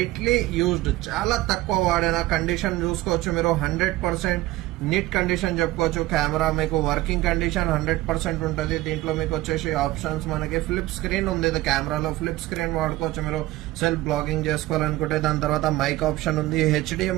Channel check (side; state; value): left; quieter; 17.5 dB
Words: యూజ్డ్, చాలా తక్కువ వాడిన కండిషన్ చూసుకోవచ్చు మీరు. 100% నీట్ కండిషన్ చెప్పుకోవచ్చు. కెమెరా మీకు వర్కింగ్ కండిషన్ 100% ఉంటుంది. దీంట్లో మీకు వచ్చేసి ఆప్షన్స్ మనకి ఫ్లిప్ స్క్రీన్ ఉంది. కెమెరాలో ఫ్లిప్ స్క్రీన్ వాడుకోవచ్చు మీరు సెల్ఫ్ బ్లాగింగ్ చేసుకోవాలనుకుంటే. దాని తర్వాత మైక్ ఆప్షన్ ఉంది,